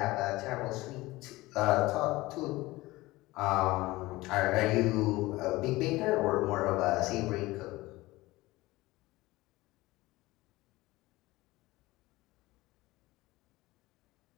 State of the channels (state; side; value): quieter; right; 19.5 dB